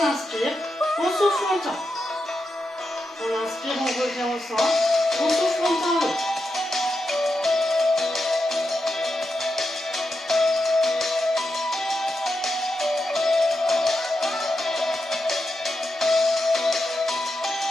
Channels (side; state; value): both; normal; correlation 0.87